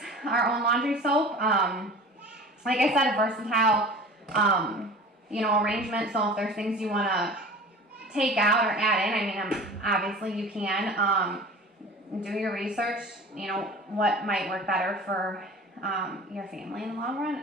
our own laundry soap. Like I said, a versatile, arrangement. So if there's things you want to take out or add in, I mean, obviously you can. Do your research. You know what might work better for your family in the long run.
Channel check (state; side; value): normal; both; correlation 0.40